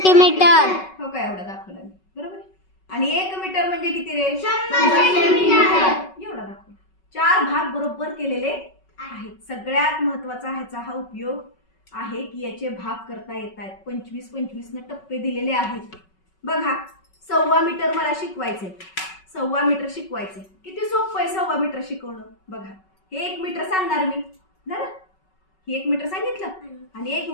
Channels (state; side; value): late; right; 5.3 ms